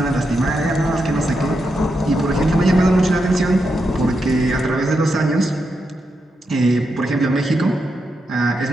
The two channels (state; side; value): normal; both; correlation 0.85